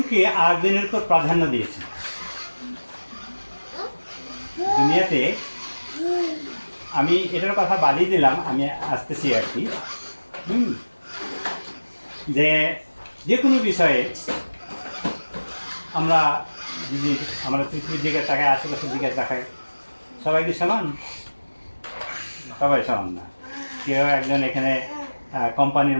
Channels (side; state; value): both; inverted; correlation -1.00